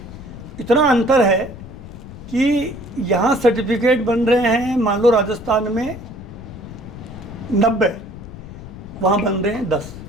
इतना अंतर है कि यहाँ सर्टिफिकेट बन रहे हैं, मान लो राजस्थान में 90, वहाँ बन रहे हैं 10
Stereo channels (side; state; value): left; noise; rumble, 13 dB below the sound